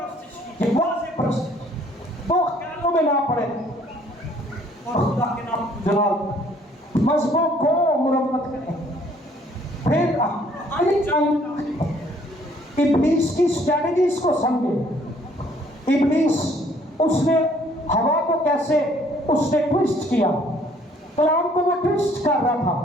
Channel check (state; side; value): normal; both; correlation 0.61